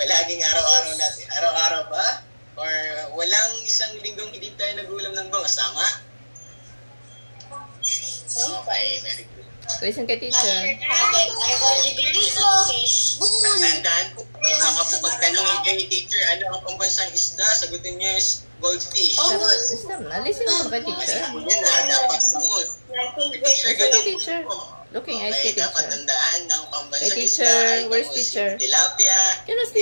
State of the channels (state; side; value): inverted; both; correlation -1.00